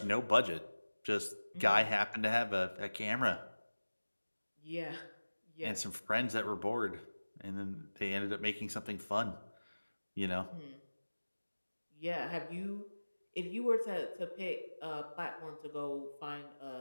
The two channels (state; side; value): inverted; both; correlation -1.00